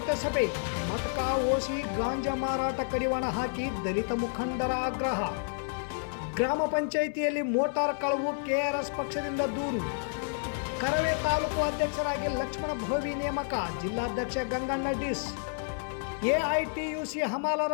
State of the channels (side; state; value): right; silent; 58 dB below the other